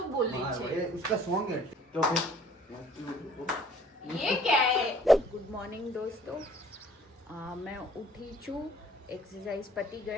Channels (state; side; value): normal; both; correlation 0.56